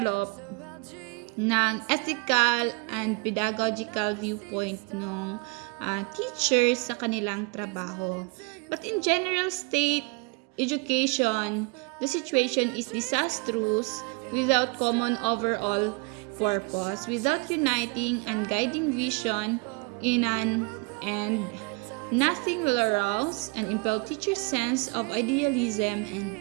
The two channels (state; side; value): quieter; left; 29.3 dB